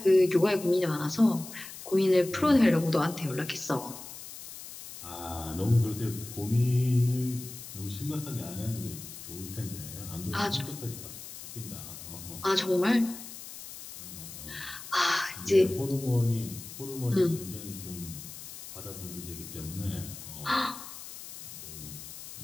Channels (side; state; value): left; noise; hiss, 13 dB below the sound